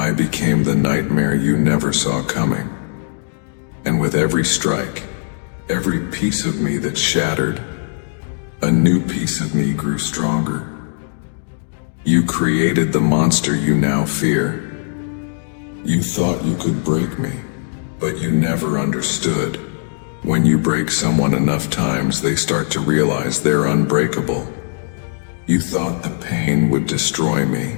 became the nightmare you never saw coming. And with every strike, every piece of me that shattered, a new piece of me grew stronger. You created the monster you now fear. You thought you could break me, but you never understood. When you break someone enough times, they start to realize they're unbreakable. You thought the pain would destroy me.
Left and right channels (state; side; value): silent; right; digital silence